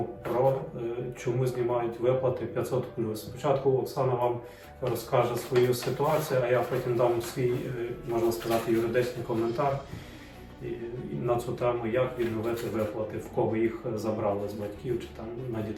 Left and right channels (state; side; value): identical; both; correlation 1.00